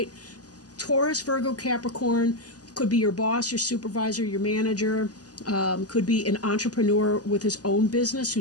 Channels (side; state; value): right; late; 0.68 ms